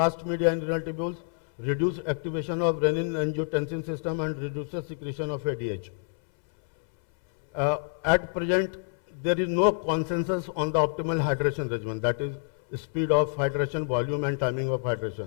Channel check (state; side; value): silent; right; 60 dB below the other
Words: media in renal tubules, reduces activation of renin-angiotensin system and reduces secretion of ADH. At present, there is no consensus on the optimal hydration regimen, that is speed of hydration, volume and timing of